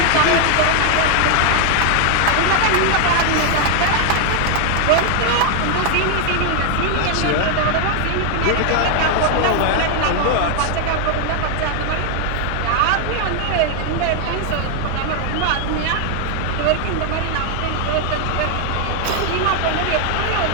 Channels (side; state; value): both; different; correlation 0.00